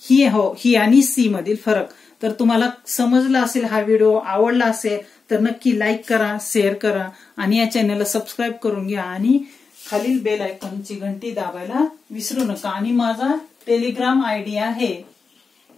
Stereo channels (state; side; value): quieter; right; 4.9 dB